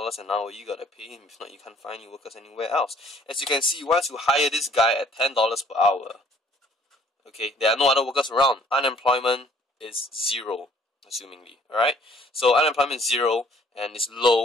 an hour. You gotta pay him. If not, you can't find any workers anywhere else. As you can see, once you hire this guy at $10 per hour, okay, there are no other workers around. Unemployment is zero, assumingly. All right. So unemployment is zero and it's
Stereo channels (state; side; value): normal; both; correlation 0.59